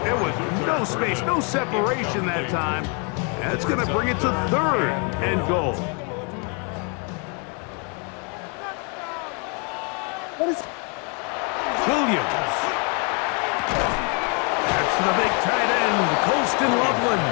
There was no space, no separation that time. That's going to bring it to third and goal. Williams. That's the big tight end, Colston Loveland.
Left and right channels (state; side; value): quieter; right; 36.2 dB